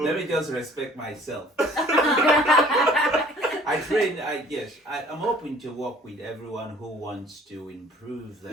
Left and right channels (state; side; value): normal; both; correlation 0.53